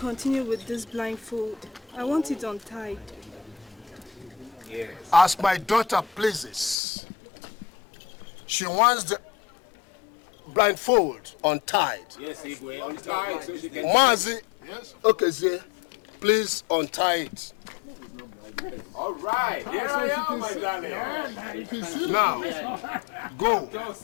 with this blindfold. I want it untied. Yes. As my daughter pleases, she wants the blindfold untied. Yes, Igwe, untied so she can... Mazi, yes. Okay, Zé, please untie it. All right, here I am, my darling. Now, go. Just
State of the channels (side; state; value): right; drops out; at 6.8 s